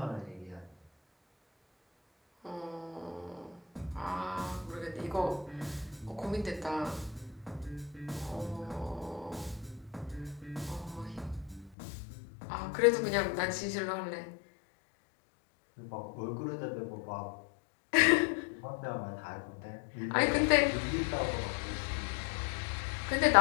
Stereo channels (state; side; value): drops out; right; at 11.7 s